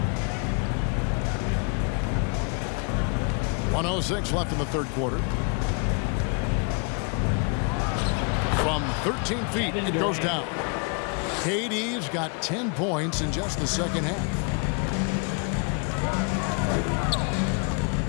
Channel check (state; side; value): quieter; right; 36.0 dB